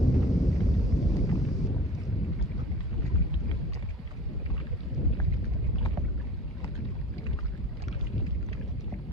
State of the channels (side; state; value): both; normal; correlation 0.42